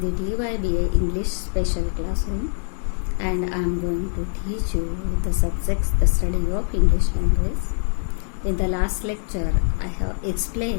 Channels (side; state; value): right; silent; 63 dB below the other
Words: the DYBA English special classroom, and I am going to teach you the subjects, the study of English language. In the last lecture, I have